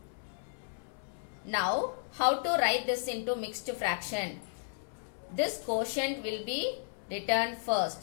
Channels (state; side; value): silent; right; 55 dB below the other